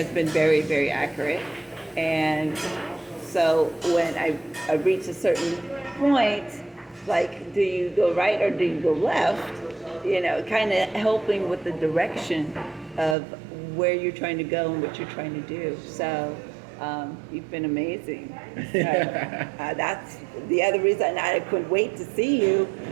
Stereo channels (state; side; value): drops out; left; at 13.2 s